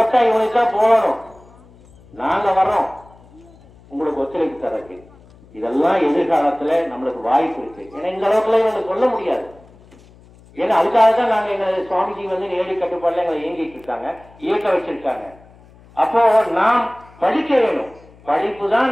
இவனுக்கு தான் போகணும். நாங்க வர்றோம் உங்களுக்கு ஒத்துழைப்பு தரக்கு. இதெல்லாம் எதிர்காலத்துல நம்மளுக்கு வாய்ப்பு இருக்கு. ஏன்னா இந்த அளவுக்குள்ள இவங்க சொல்ல முடியாது. ஏன்னா அதுக்காக தான் நாங்க எங்க சுவாமிஜி நேரடி கட்டுப்பாடுல எங்களை இயங்கிட்டு இருக்காங்க, இயக்க வச்சிருக்காங்க. அப்போ நாம் படிக்க வேணும். படிப்பு தான்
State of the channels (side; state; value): left; noise; hum, 25 dB below the sound